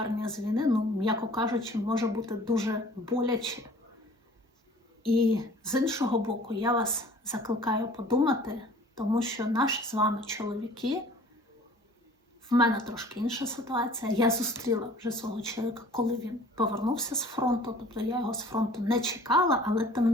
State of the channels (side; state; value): both; normal; correlation 0.50